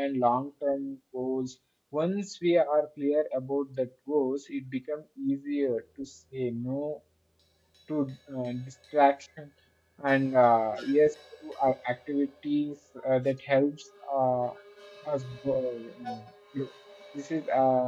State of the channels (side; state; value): both; identical; correlation 1.00